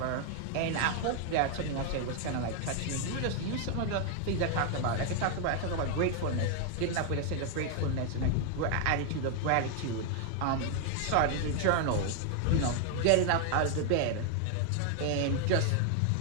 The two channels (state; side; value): different; both; correlation 0.00